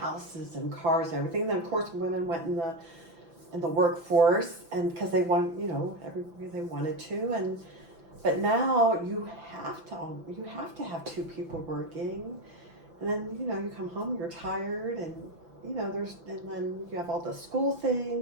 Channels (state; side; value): late; left; 5.9 ms